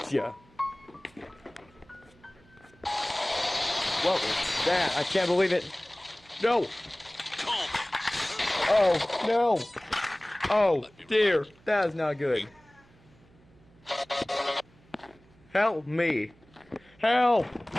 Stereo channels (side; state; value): right; noise; hum, 29 dB below the sound